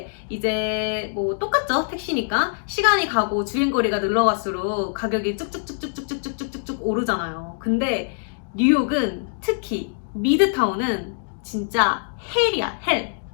이제 뭐 똑같죠, 택시니까. 시간이 가고 주행거리가 늘어갈수록 가격이 쭉쭉쭉쭉쭉쭉쭉쭉 오르잖아요. 근데 뉴욕은 특히 미드타운은 진짜 헬이야, 헬.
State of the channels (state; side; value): silent; right; digital silence